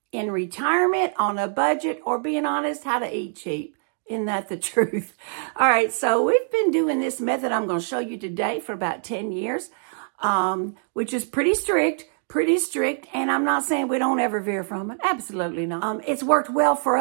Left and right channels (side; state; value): left; silent; 63 dB below the other